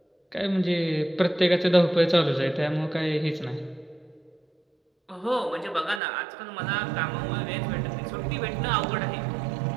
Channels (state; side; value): drops out; left; at 6.0 s